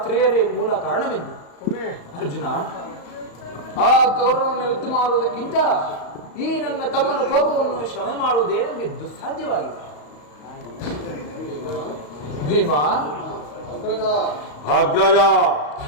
ಮೂಲ ಕಾರಣವೆಂದು. ಅರ್ಜುನ, ಆ ಕೌರವವನ್ನು ಯುದ್ಧ ಮಾಡುವುದಕ್ಕಿಂತ ಈ ನನ್ನ ತಮ್ಮನ ಕೋಪವನ್ನು ಶಮನ ಮಾಡುವುದೇ ನಮಗೆ ದುಸ್ಸಾಧ್ಯವಾಗಿದೆ. ಭೀಮಾ, ಅಗ್ರಜ,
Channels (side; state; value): right; late; 35 ms